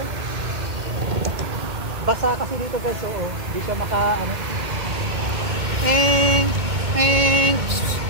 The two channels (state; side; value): late; left; 2.3 ms